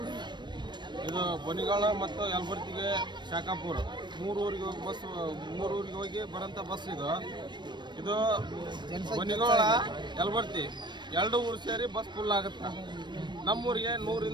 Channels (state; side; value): late; left; 0.22 ms